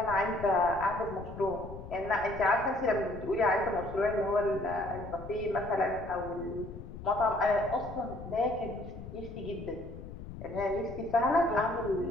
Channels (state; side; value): noise; left; rumble, 12 dB below the sound